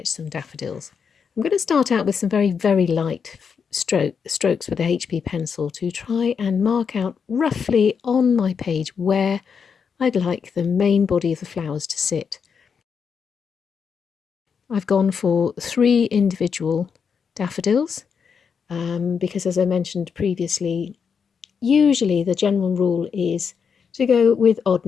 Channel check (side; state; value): right; quieter; 6.4 dB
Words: some daffodils. I'm going to start out with some very, very light strokes with a HB pencil to try and mark out roughly on my page where I'd like the main body of the flowers to sit. I've gone for 3 individual daffodils because, as I mentioned previously, usually the general rule is to go with odd